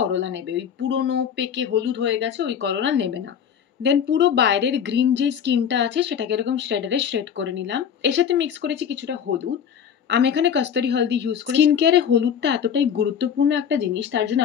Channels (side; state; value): right; quieter; 8.1 dB